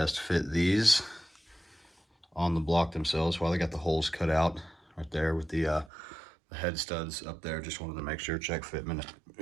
fit these on the block themselves while they got the holes cut out right there with the head studs up there. Just wanted to make sure, check fitment,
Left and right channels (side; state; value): left; drops out; at 5.9 s